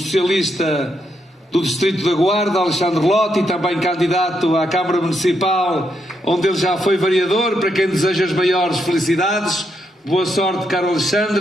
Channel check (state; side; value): normal; both; correlation 0.80